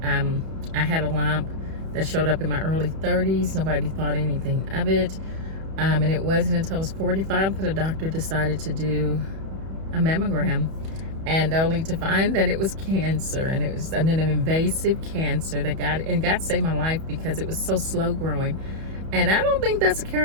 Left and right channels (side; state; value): left; late; 31 ms